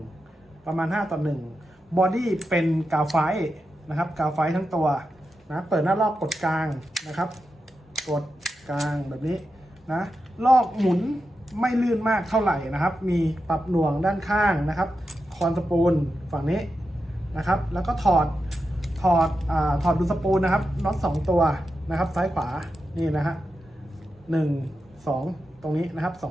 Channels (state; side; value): normal; both; correlation 0.89